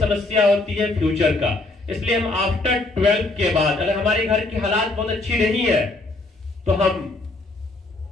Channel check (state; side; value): quieter; right; 3.0 dB